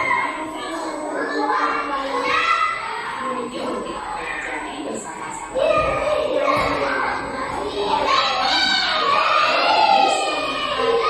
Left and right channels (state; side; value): identical; both; correlation 1.00